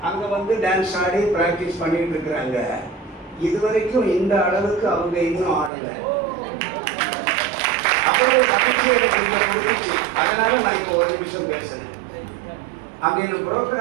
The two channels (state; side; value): drops out; left; at 5.7 s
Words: அங்கே டான்ஸ் ஆடி ப்ராக்டிஸ் பண்ணிகிட்டு இருக்கிறாங்க. இது வரைக்கும் இந்த அளவுக்கு அவங்க இன்னும் ஆடலை. அவ்வளோ மகிழ்ச்சி எனக்கு இங்கே கொடுத்துச்சு. அதனால் நான் இப்போ ஒரு நிமிஷம் பேசுனேன். அங்கே இந்த